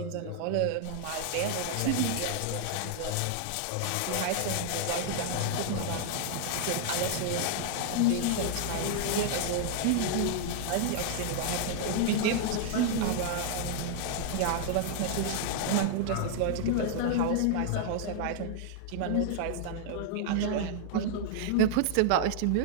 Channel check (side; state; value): both; different; correlation 0.00